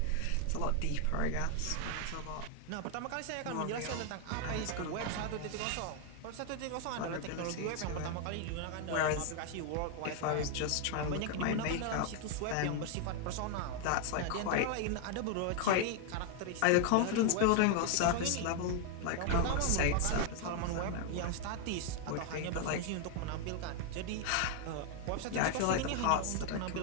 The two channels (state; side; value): different; both; correlation 0.00